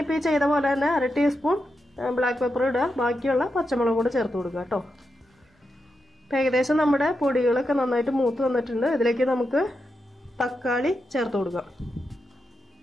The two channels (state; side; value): normal; both; correlation 0.87